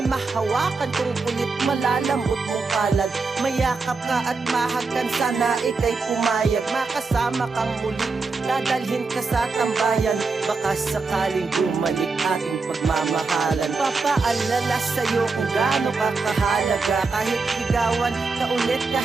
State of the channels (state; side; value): quieter; left; 4.2 dB